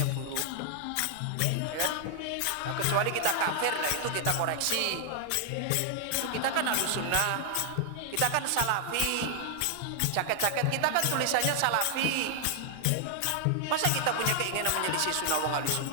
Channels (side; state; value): both; different; correlation -0.01